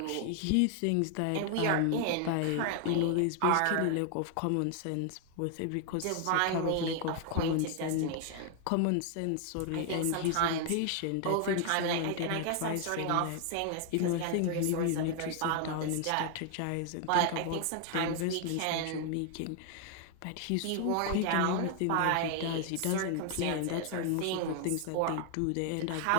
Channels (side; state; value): both; different; correlation 0.00